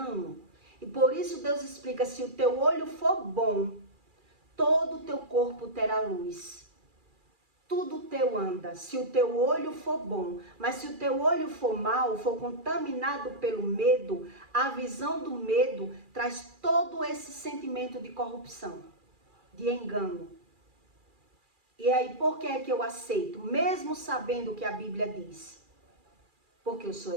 E por isso Deus explica, se o teu olho for bom, todo o teu corpo terá luz. Tudo teu anda, se o teu olho for bom. Mas se o teu olho for mau, for contaminado pelo medo, a visão do medo traz todo esse sentimento de corrupção, de engano. E aí, por que é que eu aceito? Mesmo sabendo o que a Bíblia diz. Porque eu sou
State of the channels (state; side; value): late; left; 2.4 ms